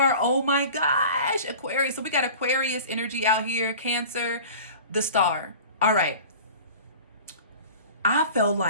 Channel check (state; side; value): inverted; both; correlation -0.39